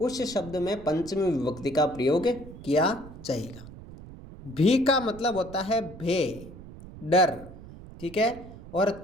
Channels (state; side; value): noise; right; rumble, 16 dB below the sound